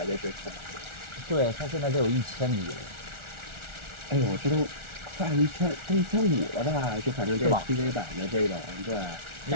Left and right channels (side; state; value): left; late; 1.4 ms